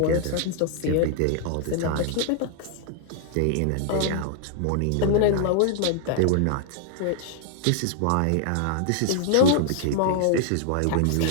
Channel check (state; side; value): different; both; correlation -0.01